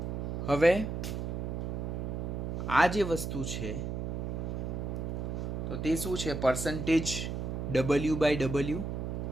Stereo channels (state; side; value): noise; right; hum, 3 dB below the sound